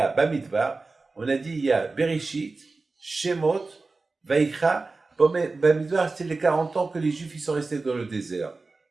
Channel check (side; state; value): left; quieter; 3.7 dB